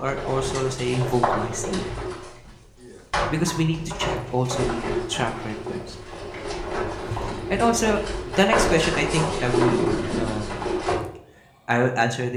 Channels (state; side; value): identical; both; correlation 1.00